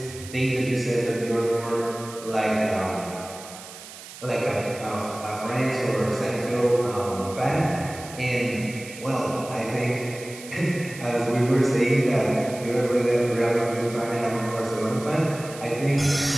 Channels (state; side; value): noise; right; hiss, 15 dB below the sound